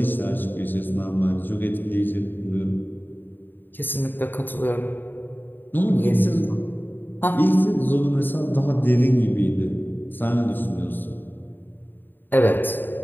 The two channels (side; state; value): right; late; 0.093 ms